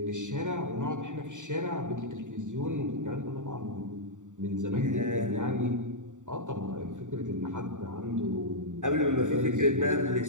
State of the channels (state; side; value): late; left; 0.86 ms